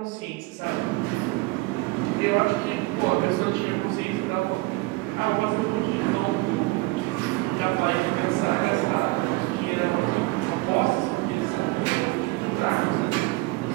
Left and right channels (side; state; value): left; quieter; 22.6 dB